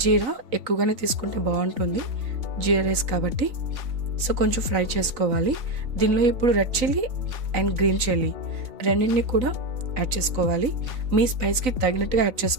జీరా ఎక్కువగానే తీసుకుంటే బాగుంటుంది, జీరా రైస్ కాబట్టి. సో కొంచెం ఫ్రై చేసుకోవాలి. దీనిలో ఇప్పుడు red chilli and green chilli రెండింటిని కూడా యాడ్ చేసుకోవాలి. మీ స్పైస్కి తగినట్టుగా యాడ్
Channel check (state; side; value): late; left; 3.9 ms